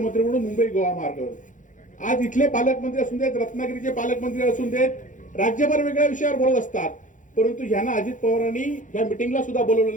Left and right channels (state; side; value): late; right; 0.37 ms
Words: म्हणून मुंबई गोवा मार्ग. आज इथले पालकमंत्री असून देत, रत्नागिरीचे पालकमंत्री असून देत, राज्यभर वेगळ्या विषयावर बोलत असतात, परंतु ह्यांना अजित पवारांनी या मिटिंगला सुद्धा बोलवलं